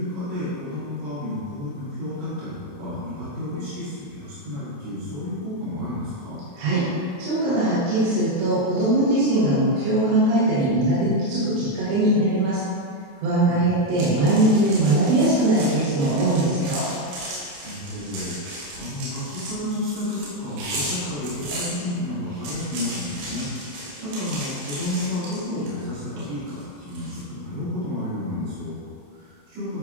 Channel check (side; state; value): left; late; 28 ms